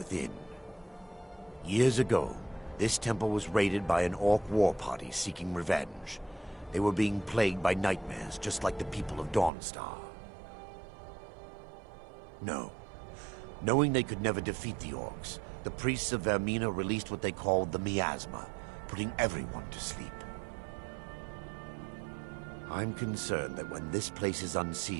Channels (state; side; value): drops out; left; at 9.5 s